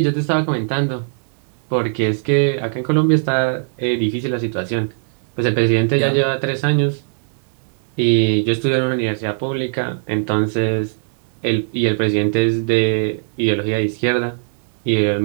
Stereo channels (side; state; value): left; silent; 66 dB below the other